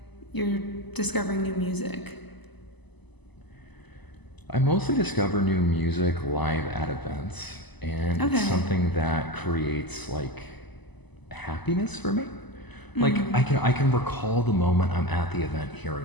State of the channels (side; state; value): right; late; 1.0 ms